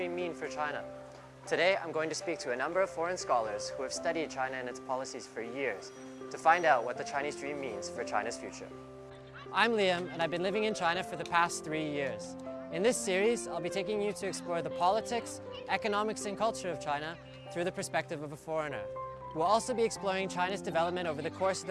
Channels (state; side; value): identical; both; correlation 1.00